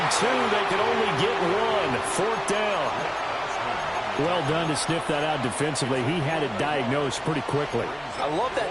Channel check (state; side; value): identical; both; correlation 1.00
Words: 2. They could only get 1. 4th down. Well done to sniff that out defensively. He had it diagnosed pretty quickly. I love